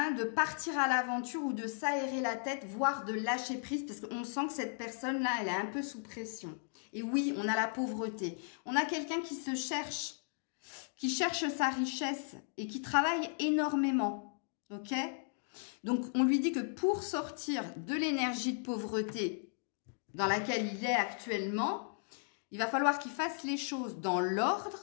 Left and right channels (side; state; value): right; silent; digital silence